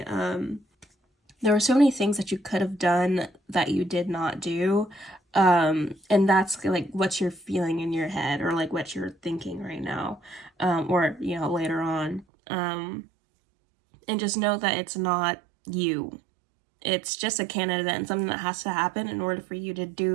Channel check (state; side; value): drops out; left; at 12.2 s